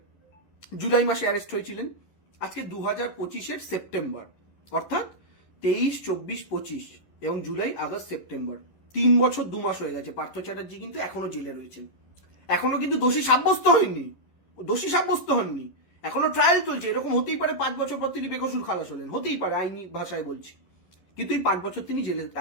জুলাই মাসে অ্যারেস্ট হয়েছিলেন, আজকে 2025-এর সেপ্টেম্বর, অর্থাৎ 23, 24, 25 এবং জুলাই, আগস্ট, সেপ্টেম্বর 3 বছর 2 মাস হয়ে গেছে। পার্থ চ্যাটার্জি কিন্তু এখনো জেলে রয়েছেন, এখনো কিন্তু দোষী সাব্যস্ত হয়নি, এখনো ট্রায়াল চলছে। এরকম হতেই পারে 5 বছর পর তিনি বেকসুর খালাস হলেন, হতেই পারে, আইনি ভাষায় বলছি। কিন্তু এই 5 বছর তিনি জেলে,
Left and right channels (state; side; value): late; right; 11 ms